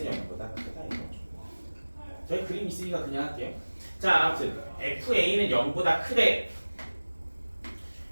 0보다 크다 이거죠. 저희 그림 있으니까 그냥 할게요. 자, 아무튼 FA는 0보다 크대.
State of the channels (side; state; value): both; inverted; correlation -1.00